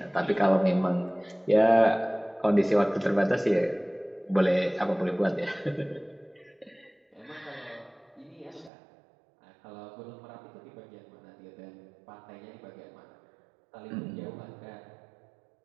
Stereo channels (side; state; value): left; drops out; at 8.7 s